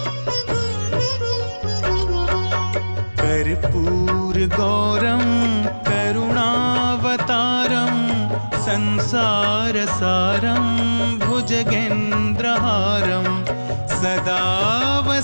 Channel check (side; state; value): both; inverted; correlation -1.00